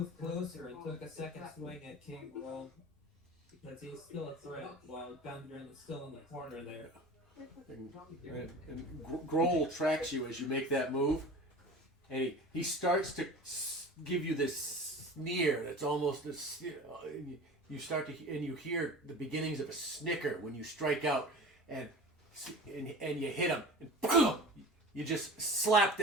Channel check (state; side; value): normal; both; correlation 0.37